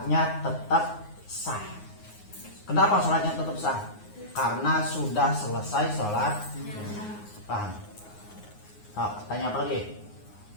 tetap sah. Kenapa sholatnya tetap sah? Karena sudah selesai sholat. Paham? Oh, tanya apa lagi?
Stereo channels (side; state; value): right; late; 9.5 ms